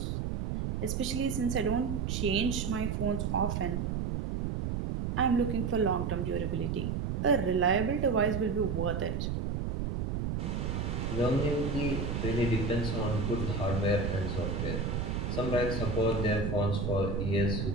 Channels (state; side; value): noise; right; rumble, 1 dB below the sound